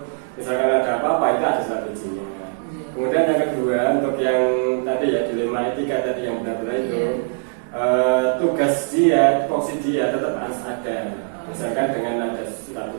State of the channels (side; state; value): left; silent; 65 dB below the other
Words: misalkan ada apa-apa itu ada surat izinnya. Kemudian yang kedua untuk yang tadi ya dilema etika tadi yang benar-benar itu tugas dia, tupoksi dia tetap harus ada. Misalkan dengan ada surat